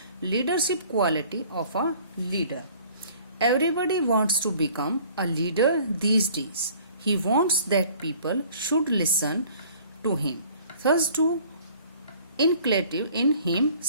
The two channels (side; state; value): both; inverted; correlation -0.53